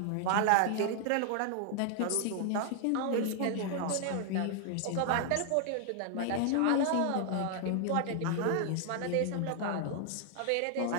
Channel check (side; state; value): both; different; correlation 0.00